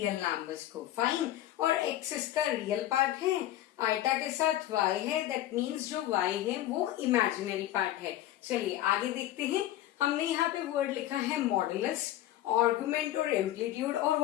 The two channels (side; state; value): right; quieter; 13.8 dB